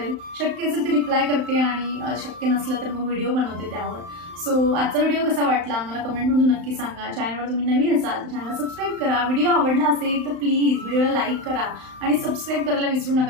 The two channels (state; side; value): late; left; 35 ms